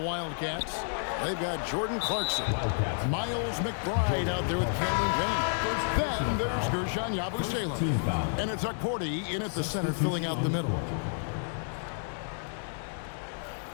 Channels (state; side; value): silent; right; digital silence